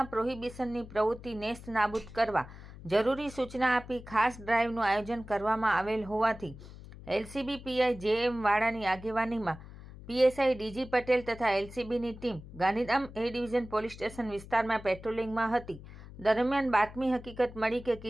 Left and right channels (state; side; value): noise; left; hum, 16 dB below the sound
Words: પ્રોહિબિશનની પ્રવૃત્તિ નેસ્ત નાબૂદ કરવા જરૂરી સૂચના આપી ખાસ ડ્રાઇવનું આયોજન કરવામાં આવેલ હોવાથી એલસીબી પીઆઈ જેએમ વાડાની આગેવાનીમાં પીએસઆઈ ડીજી પટેલ તથા એલસીબીની team Gandhidham A division police station વિસ્તારમાં પેટ્રોલિંગમાં હતી. દરમિયાન બાતમી હકીકત મળી કે